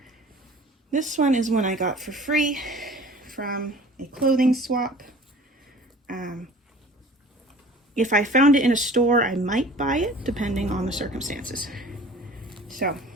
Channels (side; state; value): both; normal; correlation 0.46